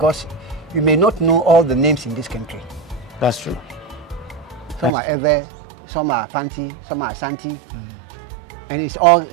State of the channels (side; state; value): left; drops out; at 4.9 s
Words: you may not know all the names in this country. That's true. Some are Ewe, some are Fanti, some are Santi, and it's all